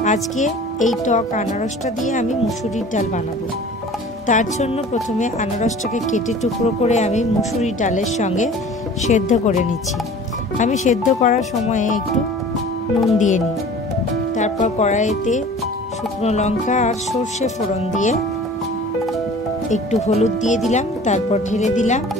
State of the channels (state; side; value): normal; both; correlation 0.44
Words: আজকে এই টক আনারসটা দিয়ে আমি মুসুরির ডাল বানাবো। তার জন্য প্রথমে আনারসটাকে কেটে টুকরো করে আমি মুসুরির ডালের সঙ্গে সেদ্ধ করে নিচ্ছি। আমি সেদ্ধ করার সময়ে একটু নুন দিয়ে নিই, তারপর কড়াইতে শুকনো লঙ্কা আর সর্ষে ফোড়ন দিয়ে একটু হলুদ দিয়ে দিলাম, তারপর ঢেলে দিলাম